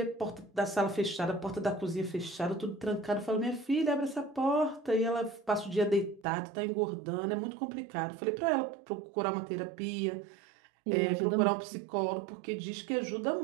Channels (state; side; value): drops out; left; at 6.2 s